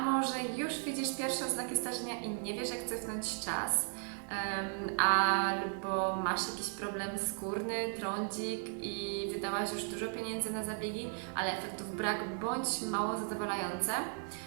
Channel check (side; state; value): left; silent; 54 dB below the other